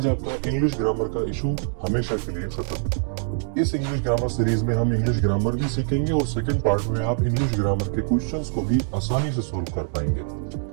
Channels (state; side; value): silent; left; digital silence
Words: आपका इंग्लिश ग्रामर का इशू हमेशा के लिए खत्म। इस इंग्लिश ग्रामर सीरीज में हम इंग्लिश ग्रामर भी सीखेंगे और सेकंड पार्ट में आप इंग्लिश ग्रामर के क्वेश्चंस को भी आसानी से सोल्व कर